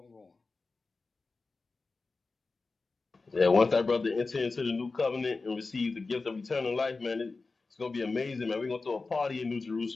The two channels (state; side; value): quieter; right; 3.9 dB